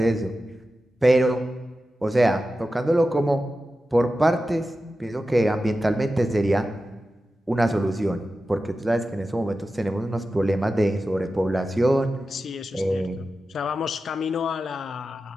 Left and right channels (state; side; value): normal; both; correlation 0.92